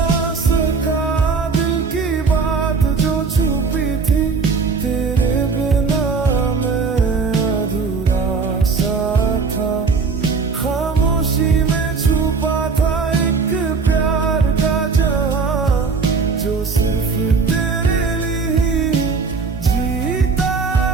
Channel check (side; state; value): left; quieter; 4.8 dB